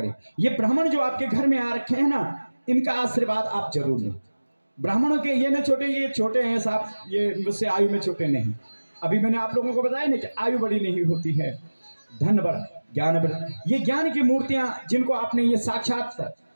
ये ब्राह्मण जो आपके घर में आ रखे हैं ना, इनका आशीर्वाद आप जरूर लें। ब्राह्मणों के ये न छोटे, ये छोटे हैं साहब, ये मुझसे आयु में छोटे नहीं। अभी मैंने आप लोगों को बताया ना कि आयु बड़ी नहीं होती है, धन बड़ा, ज्ञान बड़ा। ये ज्ञान की मूर्तियां जिनको आपने ये साक्षात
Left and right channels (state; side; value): inverted; both; correlation -1.00